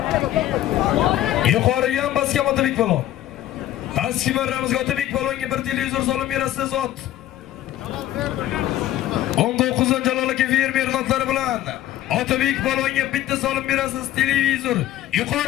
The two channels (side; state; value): right; quieter; 13.4 dB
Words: Yuqoriga ham basgan Otabek polvon. Pastki marramizga Otabek polvonga bir televizor solib berasiz zot. 19 Jalol aka fermer notlari bilan Otabek polvonga bitta solib berasiz televizor.